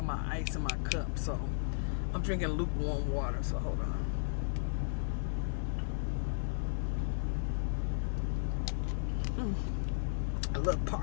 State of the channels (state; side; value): silent; right; 55 dB below the other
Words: my ice in my cup, so I'm drinking lukewarm water, so hold on. A little